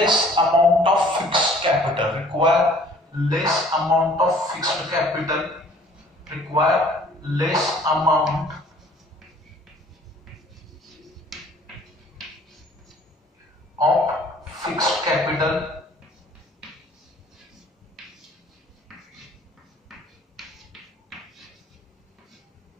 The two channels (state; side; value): normal; both; correlation 0.54